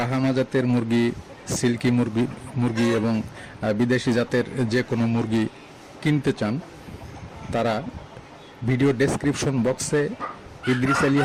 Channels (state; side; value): identical; both; correlation 1.00